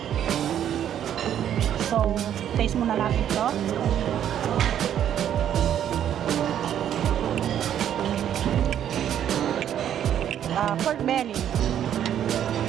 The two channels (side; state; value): left; quieter; 10.1 dB